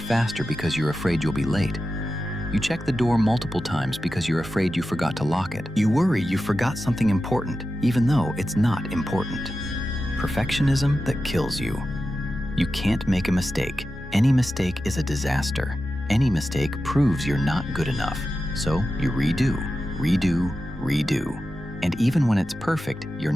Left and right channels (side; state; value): both; normal; correlation 0.92